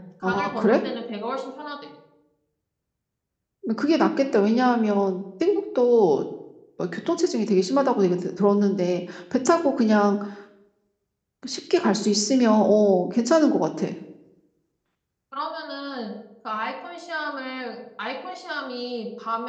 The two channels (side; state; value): both; identical; correlation 1.00